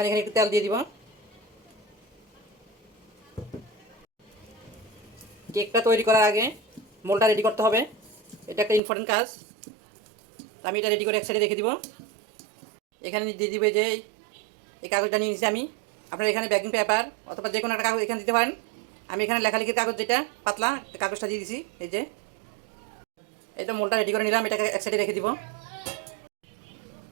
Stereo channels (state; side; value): drops out; left; at 8.8 s